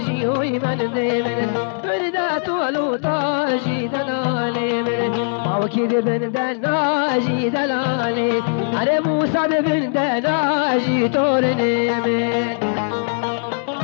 وی من دیمن برده طولو تاجی دلالی من ماوکی برده ناجی دلالی اره موسى برده ناجی تورنی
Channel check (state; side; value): silent; right; digital silence